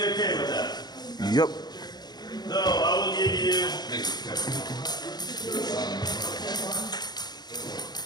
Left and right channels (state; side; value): late; right; 0.20 ms